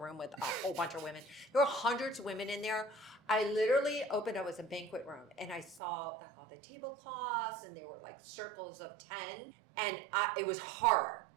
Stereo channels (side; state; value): left; drops out; at 5.8 s